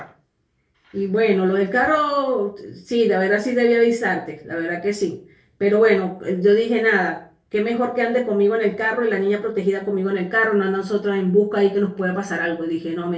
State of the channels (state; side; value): identical; both; correlation 1.00